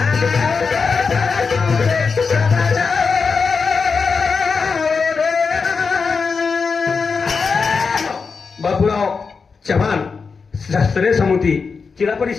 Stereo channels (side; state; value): right; quieter; 5.1 dB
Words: बाबूराव चव्हाण शास्त्रीय समिती जिला